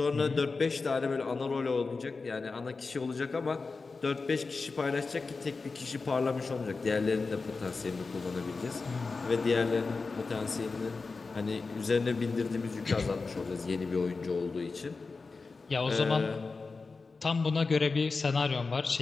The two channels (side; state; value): right; quieter; 4.2 dB